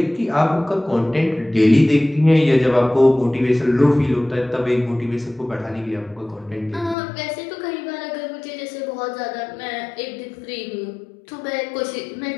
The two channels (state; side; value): drops out; right; at 7.0 s